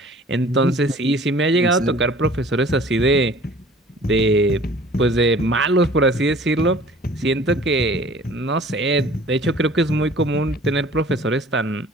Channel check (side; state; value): both; normal; correlation 0.49